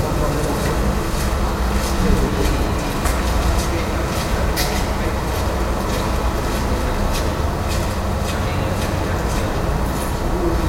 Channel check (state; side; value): identical; both; correlation 1.00